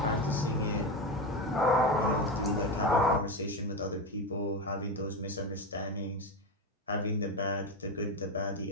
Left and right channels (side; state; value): both; normal; correlation 0.16